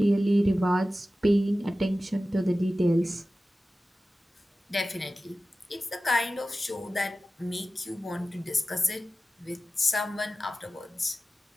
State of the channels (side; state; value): both; normal; correlation 0.95